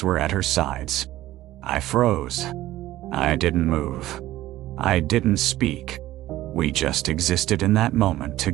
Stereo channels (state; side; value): quieter; left; 15.3 dB